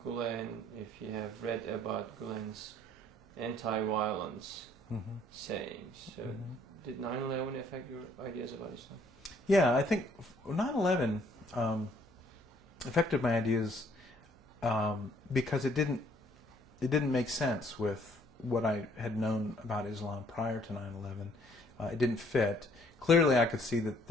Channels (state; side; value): normal; both; correlation 0.63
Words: Gulen. If you have read about Gulen's anti-violence sayings, so did 9/11 affect your ideas about Islam? Yeah, I think 9/11 affected my ideas because it didn't make sense with what I had known about Islam prior to 9/11. It didn't fit. Clearly, I could see that